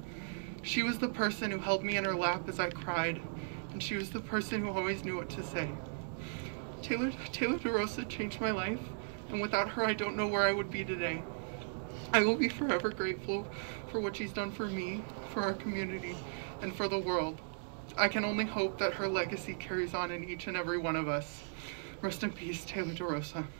She was the person who held me in her lap as I cried, and she was the person who always knew what to say. Taylor DeRosa changed my life, and without her, I don't know where I would be today. I will be forever grateful for what she's done for me, for our community, and for the world. I can only hope that her legacy carries on in each and every one of us. Rest in peace, Taylor DeRosa.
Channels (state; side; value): silent; left; digital silence